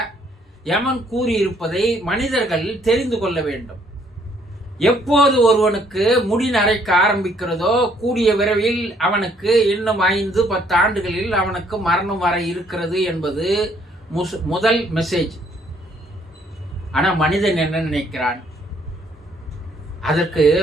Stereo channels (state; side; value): normal; both; correlation 0.65